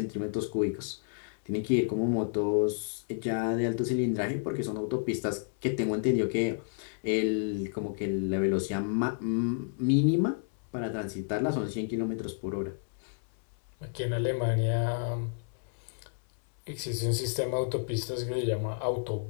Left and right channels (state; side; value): silent; right; 57 dB below the other